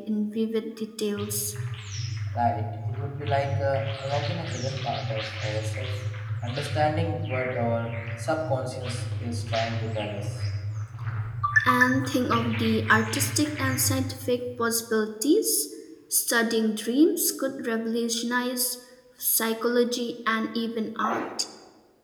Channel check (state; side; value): identical; both; correlation 1.00